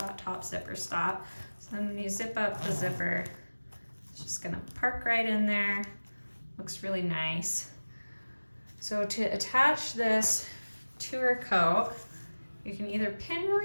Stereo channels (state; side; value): inverted; both; correlation -1.00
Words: top zipper stop. So then when you zip up the zipper, it's just gonna park right in there. Looks really nice. So to attach this to our coat, you can either pin